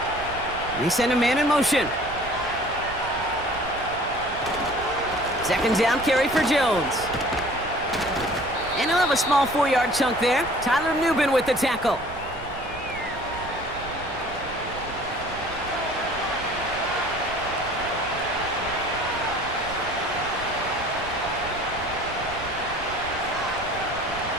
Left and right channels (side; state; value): right; noise; rumble, 14 dB below the sound